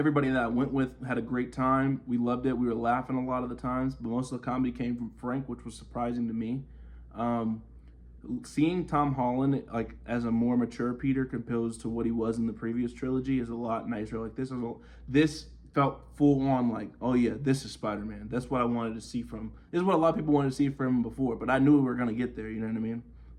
that I went with had a great time. We loved it. We were laughing a lot of the times, but most of the comedy came from Frank, which was surprising to me. Seeing Tom Holland like as a more mature Peter compared to what he was in the previous trilogy is a lot nicer. Like this felt full on like, oh yeah, this is Spider-Man. That's what I wanted to see from. This is what a lot of people wanted to see from him before, but I knew we were gonna get there. You know what I mean?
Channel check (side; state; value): both; identical; correlation 1.00